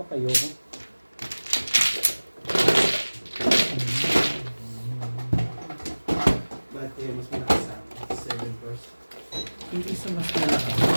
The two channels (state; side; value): inverted; both; correlation -1.00